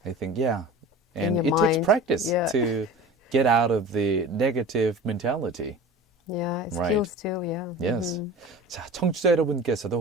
I think, yeah. And your it takes mind, practice yeah. to get out of the negative mentality. Yeah, it Right. skills too, yeah. Yes. 자, 청취자 여러분께서도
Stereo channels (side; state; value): both; normal; correlation 0.37